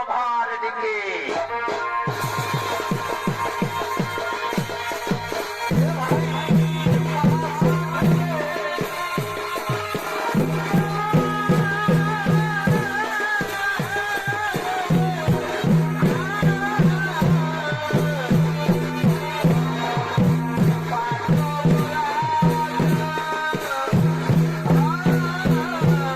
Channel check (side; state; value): both; identical; correlation 1.00